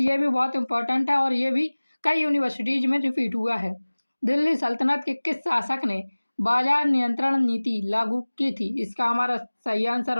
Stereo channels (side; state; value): both; inverted; correlation -1.00